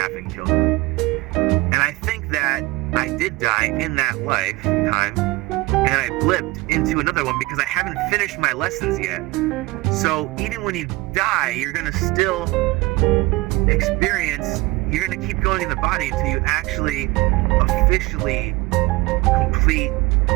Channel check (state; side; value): quieter; left; 21.5 dB